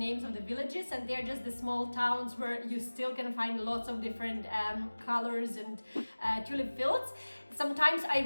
of the villages, and they're just the small towns where you still can find lots of different colors and tulip fields. Sometimes I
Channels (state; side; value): inverted; both; correlation -1.00